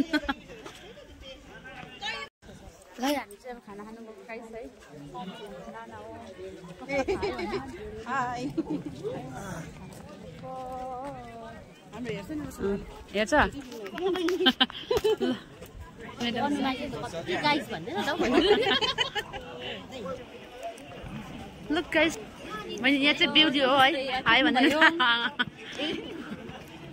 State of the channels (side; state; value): both; identical; correlation 1.00